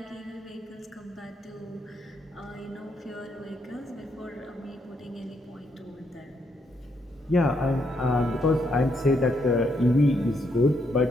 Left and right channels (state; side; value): normal; both; correlation 0.76